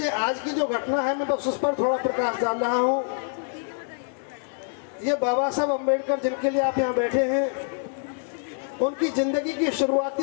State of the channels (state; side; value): silent; right; 61 dB below the other